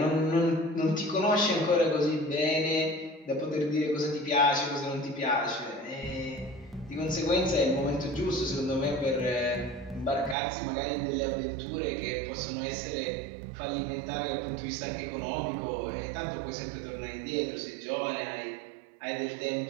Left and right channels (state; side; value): drops out; left; at 10.4 s